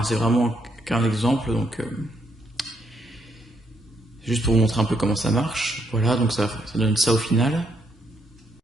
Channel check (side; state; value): both; normal; correlation 0.75